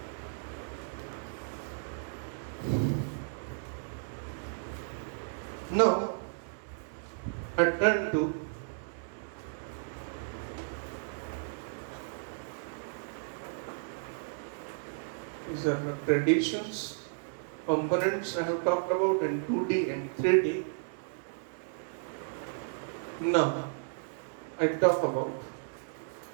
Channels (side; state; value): left; silent; digital silence